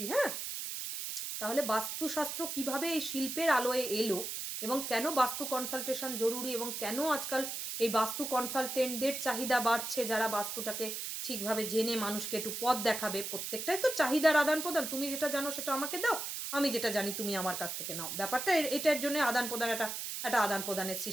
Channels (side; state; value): right; noise; hiss, 5 dB below the sound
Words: হ্যাঁ, তাহলে বাস্তুশাস্ত্র কিভাবে এই শিল্পের আলোয় এলো এবং কেন বাস্তু কনসালটেশন জরুরি এবং কেন আজকাল এই বাস্তু কনসালটেন্টদের চাহিদা বাড়ছে, যারা বাস্তুটাকে ঠিকভাবে জেনে মানুষকে একটু পথ দেখাবে। প্রত্যেকটাই তো চাহিদার আদান প্রদান, তুমি যেটা জানো সেটা আমাকে দাও, আমি যেটা জানি তুমি আমার কাছ থেকে নাও। ব্যাপারটা এটার জন্য আদান প্রদান, একটা আদান প্রদানের